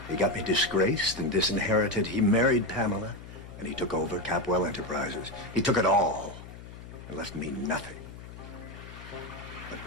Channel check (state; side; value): noise; left; hum, 14 dB below the sound